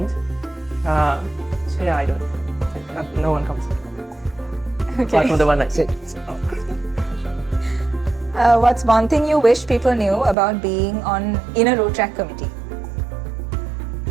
So yeah, I don't. No one comes. Okay. Apart from the one I said. What's one thing you wish people knew about being in a Rotaract committee?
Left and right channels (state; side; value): drops out; left; at 10.4 s